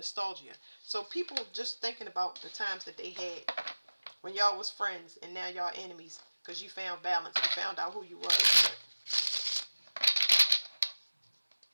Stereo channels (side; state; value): both; inverted; correlation -1.00